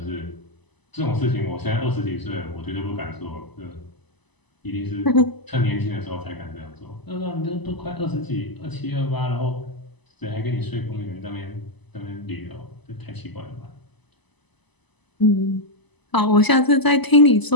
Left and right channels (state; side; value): late; right; 1.0 ms